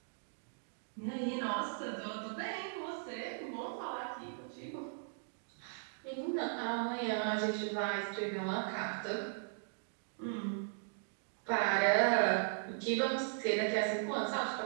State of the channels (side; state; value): left; silent; digital silence